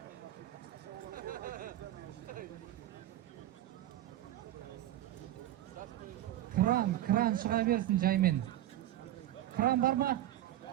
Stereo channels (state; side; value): quieter; left; 13.4 dB